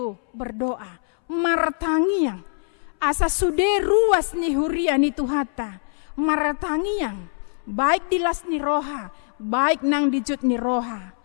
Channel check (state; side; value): silent; right; 62 dB below the other